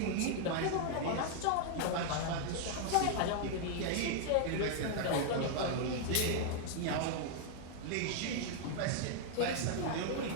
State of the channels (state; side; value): different; both; correlation 0.00